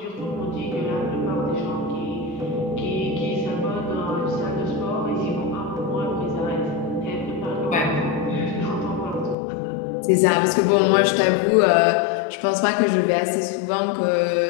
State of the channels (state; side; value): drops out; right; at 9.3 s